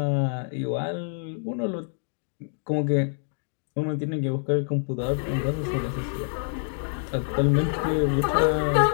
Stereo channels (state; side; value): silent; right; digital silence